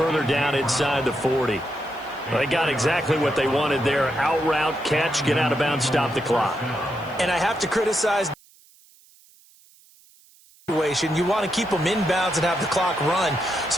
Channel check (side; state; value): right; noise; hiss, 28 dB below the sound